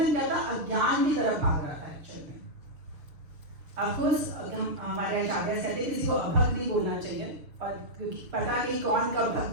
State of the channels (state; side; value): late; left; 6.6 ms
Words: क्या था? अज्ञान की तरफ भाग रहा था एक्चुअल में। ऑफकोर्स हमारे आचार्य कहते हैं किसी को अभक्त नहीं बोलना चाहिए, पर क्योंकि पता नहीं कौन कब